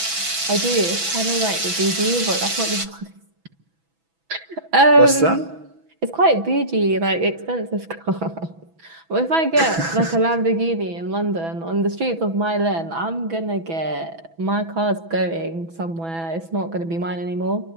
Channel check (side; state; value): left; late; 6.1 ms